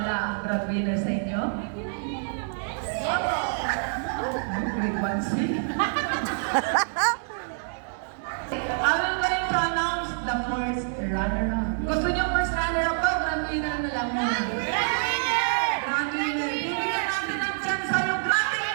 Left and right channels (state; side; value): silent; left; digital silence